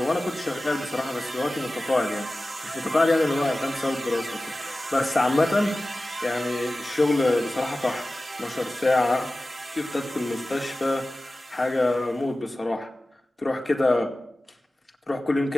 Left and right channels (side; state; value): both; normal; correlation 0.96